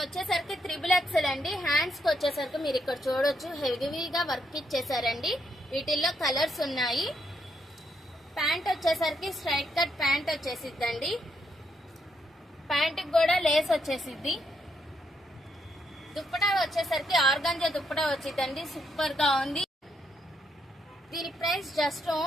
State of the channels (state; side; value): normal; both; correlation 0.77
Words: వచ్చేసరికి XXL అండి. హ్యాండ్స్కి వచ్చేసరికి మీరు ఇక్కడ చూడొచ్చు, హెవీగా వర్క్ ఇచ్చేసారండి. వీటిల్లో కలర్స్ ఉన్నాయి. ప్యాంట్ వచ్చేసరికి స్ట్రైట్ కట్ ప్యాంట్ వచ్చేసిద్దండి. ప్యాంట్కి కూడా లేస్ వచ్చేసిద్ది. దుప్పటా వచ్చేసరికి ఆర్గాంజా దుప్పటా వచ్చిందండి, సూపర్ గా ఉంది. దీని ప్రైస్ జస్ట్